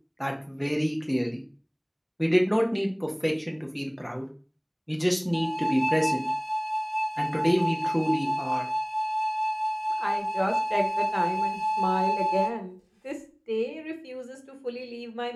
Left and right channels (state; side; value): identical; both; correlation 1.00